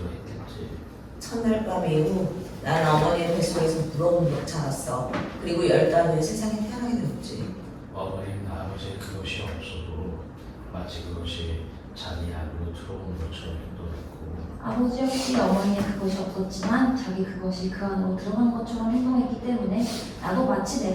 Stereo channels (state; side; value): identical; both; correlation 1.00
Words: 했겠지. 첫날 밤 이후 나는 어머니의 뱃속에서 부러움으로 자랐어. 그리고 10달 후에 세상에 태어나게 되었지. 어머니는 아버지의 그것이 없어도 마치 그것이 자기 안으로 들어온 것처럼 행동했고 아버지 역시 어머니의 그것이 없었지만 자기 그것이 그 안으로 들어간 것처럼 행동했기 때문에 나도 마치